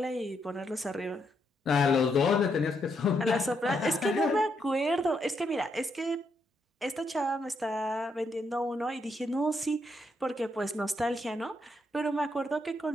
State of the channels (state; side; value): normal; both; correlation 0.78